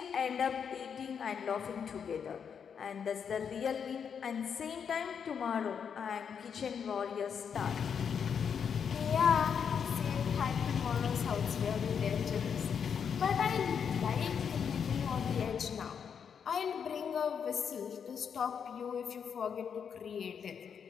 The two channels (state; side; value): quieter; right; 7.1 dB